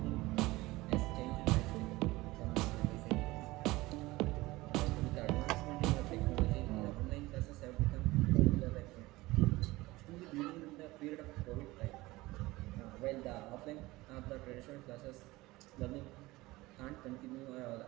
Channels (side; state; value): left; quieter; 19.9 dB